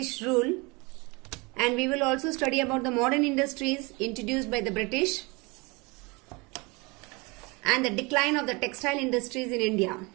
rule, and we will also study about the modern industries introduced by the British and the decline of the textile industries in India.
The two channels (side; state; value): left; quieter; 27.1 dB